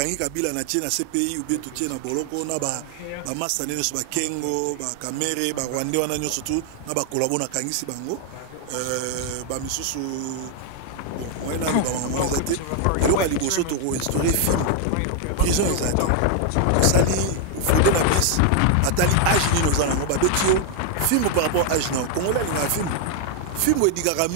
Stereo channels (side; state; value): both; different; correlation 0.00